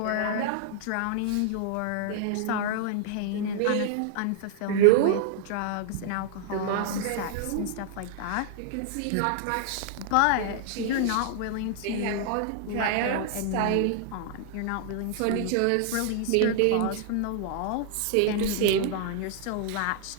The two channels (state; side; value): different; both; correlation -0.01